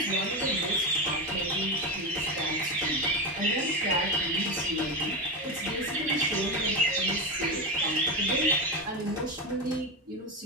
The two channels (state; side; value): normal; both; correlation 0.16